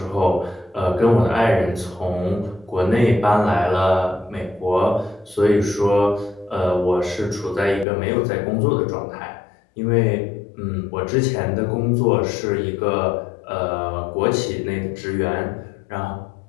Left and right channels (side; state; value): right; drops out; at 7.9 s